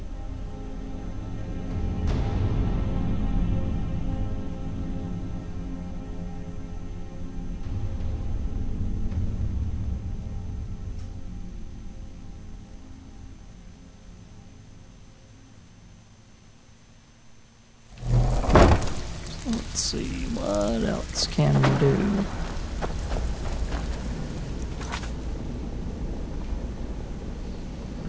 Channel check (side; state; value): both; identical; correlation 1.00